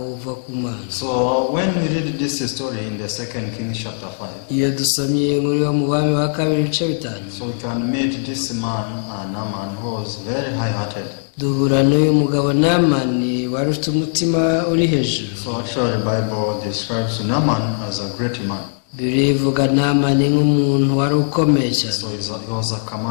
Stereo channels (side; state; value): right; silent; digital silence